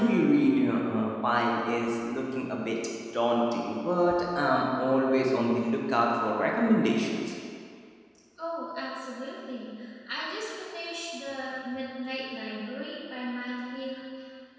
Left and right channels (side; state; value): both; identical; correlation 1.00